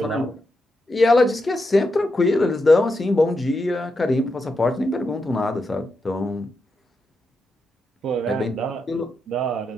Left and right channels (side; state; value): both; normal; correlation 0.86